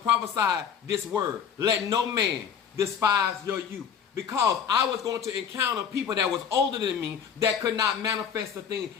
this word, let no man despise your youth. Because I was going to encounter people that was older than me that could not manifest the thing.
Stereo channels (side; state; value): right; quieter; 7.5 dB